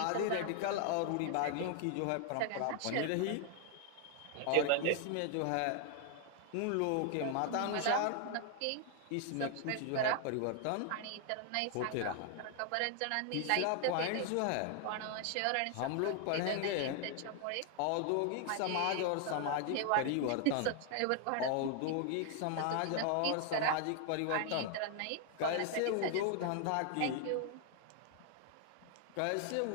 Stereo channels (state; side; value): different; both; correlation 0.00